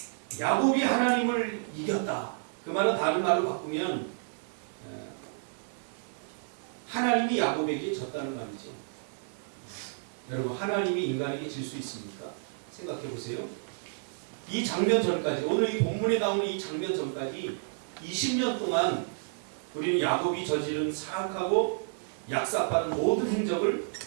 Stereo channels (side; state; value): left; silent; 57 dB below the other